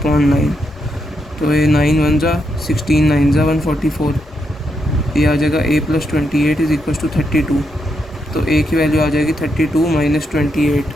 तो ये 9 1 जा 16, 9 जा 144। ये आ जाएगा a + 28 इज़ इक्वल टू 32। तो a की वैल्यू आ जाएगी 32 माइनस 28।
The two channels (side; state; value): both; normal; correlation 0.81